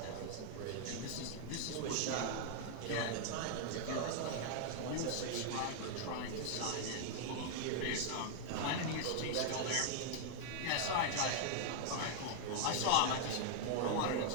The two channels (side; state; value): both; different; correlation -0.01